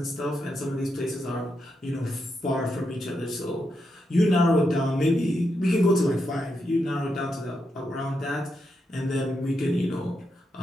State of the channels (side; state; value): both; normal; correlation 0.84